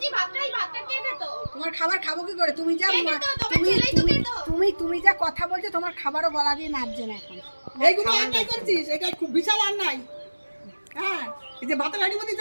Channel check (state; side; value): inverted; both; correlation -1.00